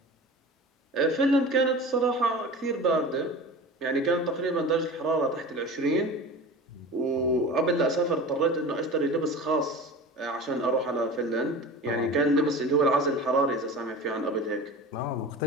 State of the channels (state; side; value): normal; both; correlation 0.34